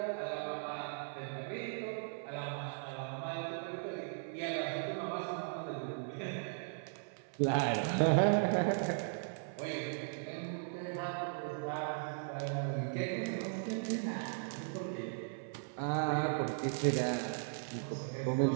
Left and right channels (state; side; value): silent; left; 53 dB below the other